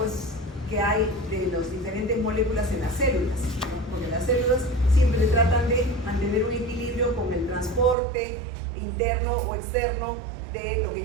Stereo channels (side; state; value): left; drops out; at 8.0 s